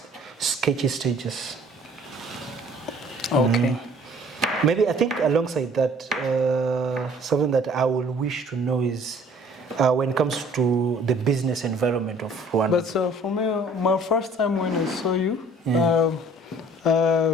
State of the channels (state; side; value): normal; both; correlation 0.54